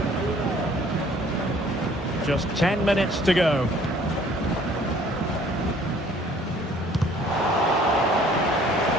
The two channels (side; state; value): both; normal; correlation 0.56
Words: Just 10 minutes to go.